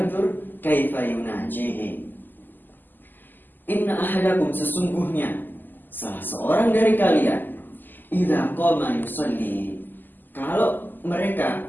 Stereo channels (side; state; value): right; late; 0.089 ms